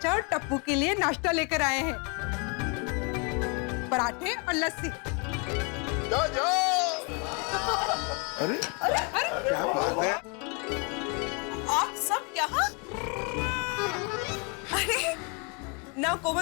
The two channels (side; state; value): right; quieter; 33.6 dB